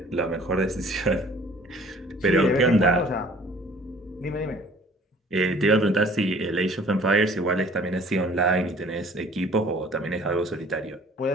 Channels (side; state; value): both; normal; correlation 0.52